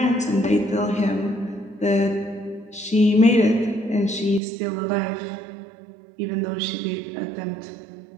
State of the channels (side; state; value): left; drops out; at 4.4 s